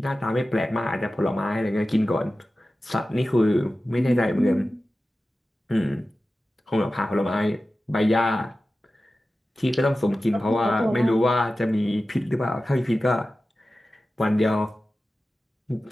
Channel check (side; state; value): both; normal; correlation 0.95